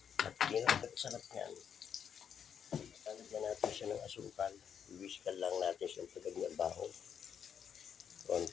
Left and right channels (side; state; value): right; quieter; 8.0 dB